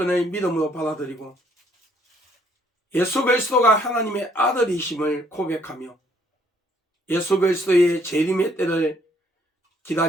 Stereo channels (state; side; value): normal; both; correlation 0.65